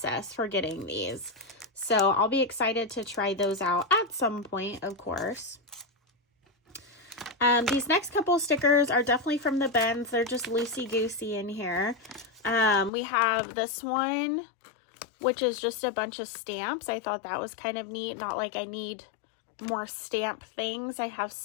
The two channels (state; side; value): drops out; right; at 12.9 s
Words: for getting these. So I'll be excited to try those out at some point, of course. These next couple stickers are definitely from the bins. They're just loosey-goosey in here. We have this one, which is just a bunch of stamps. I thought that was kind of neat. Not like I need more stamp things. I have